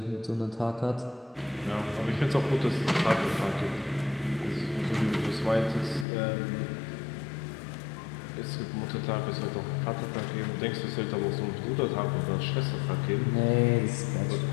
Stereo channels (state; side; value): drops out; right; at 6.1 s